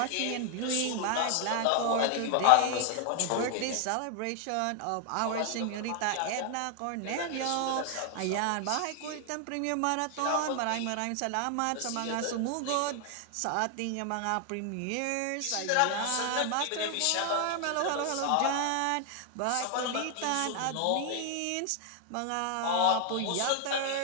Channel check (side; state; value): both; different; correlation 0.00